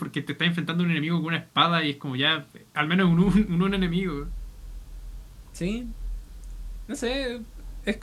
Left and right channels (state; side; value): identical; both; correlation 1.00